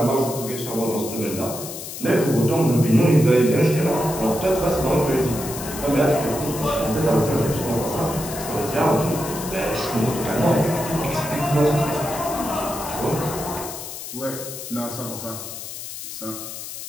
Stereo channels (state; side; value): noise; left; hiss, 9 dB below the sound